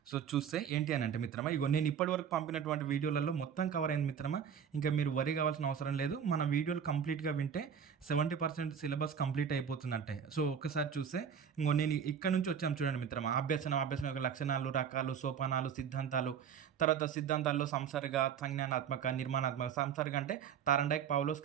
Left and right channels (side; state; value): left; quieter; 7.7 dB